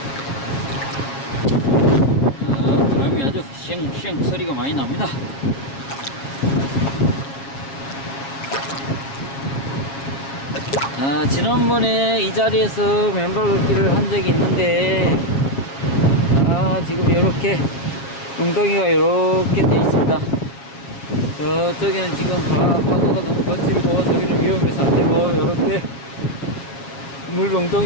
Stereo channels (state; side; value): late; right; 7.3 ms